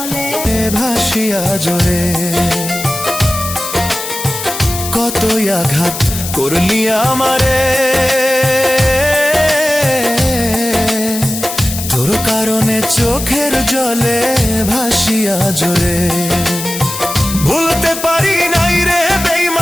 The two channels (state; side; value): noise; left; hiss, 7 dB below the sound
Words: ভাসিয়া জোরে। কতই আঘাত করলি আমারে, তোর কারণে চোখের জলে ভাসিয়া জোরে। ভুলতে পারি নাই রে